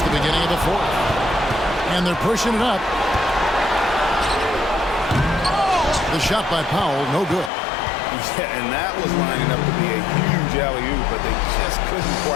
the beginning of the fourth. And they're pushing it up. The shot by Powell, no good. Yeah, and that was lining up to be a huge alley-oop, but they just couldn't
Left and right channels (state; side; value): drops out; right; at 7.5 s